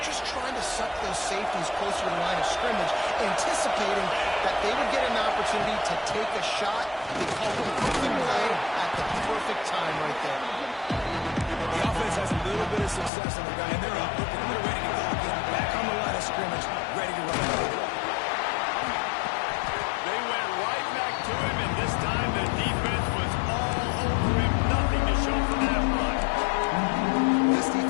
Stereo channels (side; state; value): right; drops out; at 13.1 s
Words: just trying to suck those safeties closer to the line of scrimmage, anticipating that they would get an opportunity to take a shot. They call the perfect play at the perfect time right there. The offense has a little bit of success on the guy, and they're up, looking, they're ready to go again, back on the line of scrimmage, ready to run. They went right back to him, and this time the defense was all over him. Nothing to show for that run. This